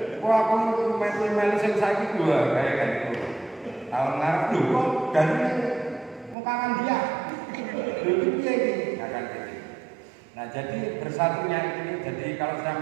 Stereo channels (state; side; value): drops out; left; at 6.4 s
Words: Wah aku melu sing saiki dua kayak kan itu. Tahun ngarep lho kok dari mau kangen dia. Lho piye iki? Akan gitu. Nah, jadi bersatunya ini, jadi kalau